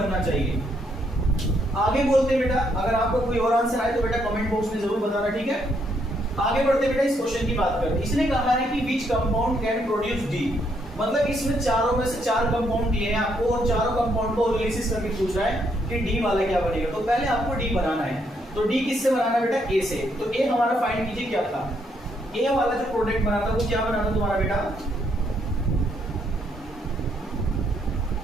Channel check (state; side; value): normal; both; correlation 0.73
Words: चाहिए। आगे बोलते हैं बेटा, अगर आपको कोई और आंसर आए तो बेटा कमेंट बॉक्स में जरूर बताना, ठीक है। आगे बढ़ते बेटा, इस क्वेश्चन की बात करते हैं। इसने कहा है कि which compound can produce D, मतलब इसमें चारों में से चार कंपाउंड दिए हैं आपको और चारों कंपाउंड को ओजोलिसिस करके पूछ रहा है कि डी वाला क्या बनेगा। तो पहले आपको डी बनाना है, तो डी किससे बनाना बेटा, ए से। तो ए हमारा फाइंड कीजिए क्या था, ए वाला जो प्रोडक्ट बना था वो क्या बना था तुम्हारा बेटा,